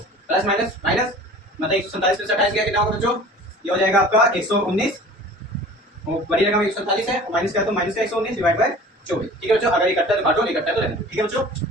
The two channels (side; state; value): both; normal; correlation 0.44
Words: प्लस माइनस माइनस मतलब 147 प्लस 28 कितना होगा बच्चों? ये हो जाएगा आपका 119, बड़ी रकम 147 है, माइनस का तो माइनस का 119 डिवाइड बाय 24। ठीक है बच्चों, अगर इकट्ठा तो काटो, नहीं इकट्ठा तो रहने दो। ठीक है बच्चों,